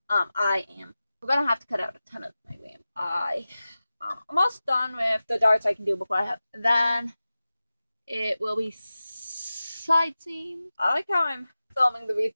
We're gonna have to cut out a ton of my RAM. I'm almost done with the darts I can do before I have. Then it will be side seam. I like how I'm filming the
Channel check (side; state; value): both; inverted; correlation -0.95